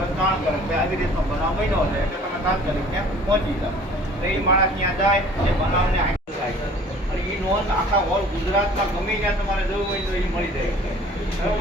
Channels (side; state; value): both; normal; correlation 0.50